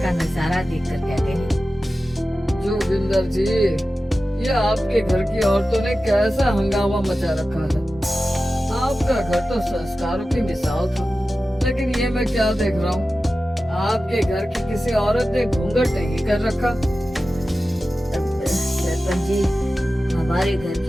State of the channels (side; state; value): both; normal; correlation 0.94